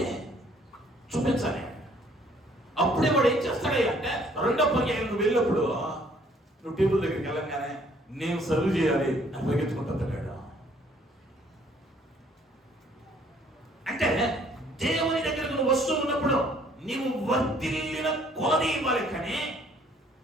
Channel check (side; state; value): both; normal; correlation 0.61